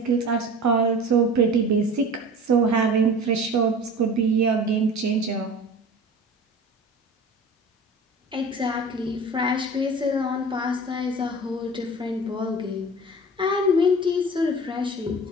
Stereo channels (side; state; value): both; normal; correlation 0.38